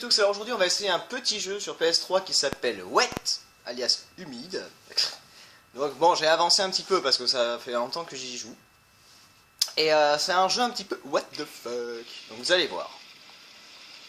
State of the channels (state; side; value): identical; both; correlation 1.00